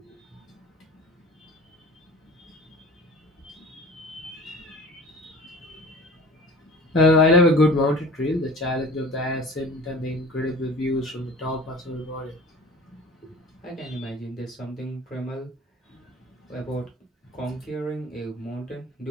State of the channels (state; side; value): normal; both; correlation 0.42